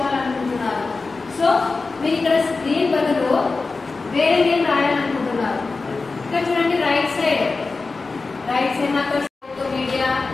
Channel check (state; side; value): quieter; right; 3.9 dB